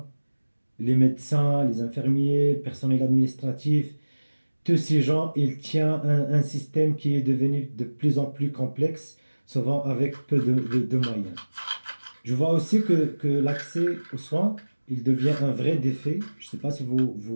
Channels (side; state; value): both; inverted; correlation -1.00